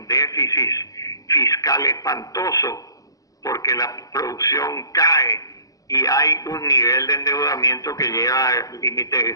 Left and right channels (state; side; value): late; right; 0.17 ms